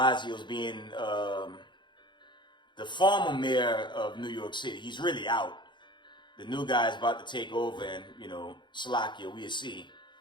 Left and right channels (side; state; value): right; late; 0.22 ms